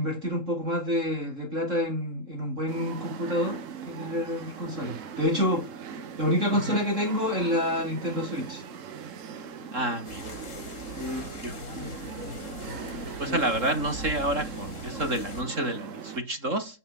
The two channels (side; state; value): left; late; 3.7 ms